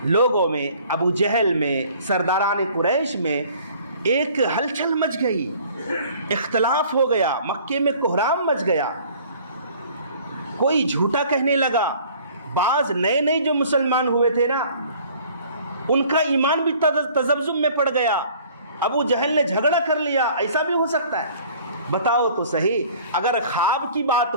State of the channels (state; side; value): inverted; both; correlation -0.52